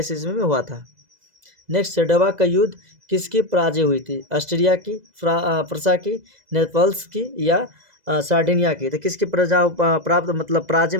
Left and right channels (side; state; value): left; late; 2.0 ms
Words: ईस्वी में हुआ था। नेक्स्ट, सेडोवा का युद्ध किसकी पराजय हुई थी? ऑस्ट्रिया की, फ्रांस की, नेपल्स की या सार्डिनिया की? तो किसकी प्राप्त मतलब पराजय